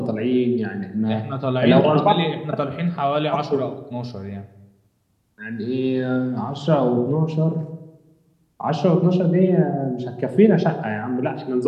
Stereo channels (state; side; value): identical; both; correlation 1.00